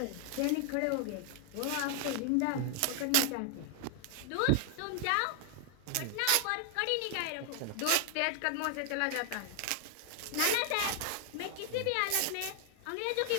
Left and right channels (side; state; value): both; different; correlation 0.00